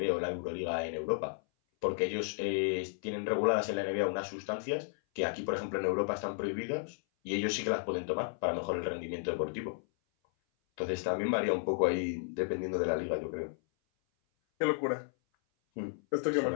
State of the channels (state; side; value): silent; right; 55 dB below the other